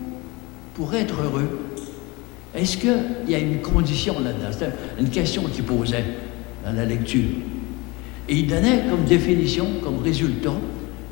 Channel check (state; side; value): quieter; right; 24.6 dB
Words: pour être heureux, est-ce qu'il y a une condition là-dedans? C'était une question qu'il posait dans la lecture. Et il donnait comme définition, comme résultat,